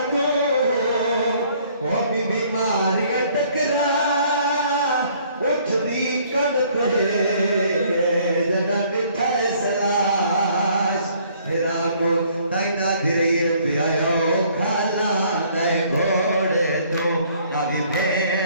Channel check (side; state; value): both; inverted; correlation -0.61